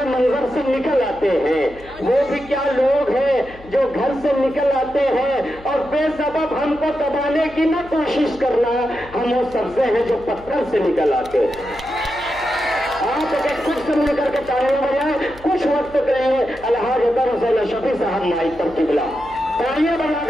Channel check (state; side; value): noise; left; hum, 20 dB below the sound